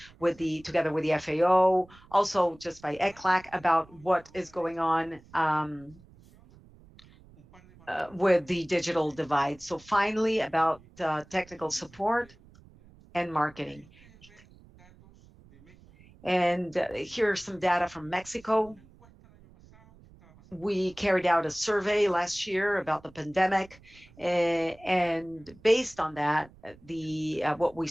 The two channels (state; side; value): noise; right; rumble, 25 dB below the sound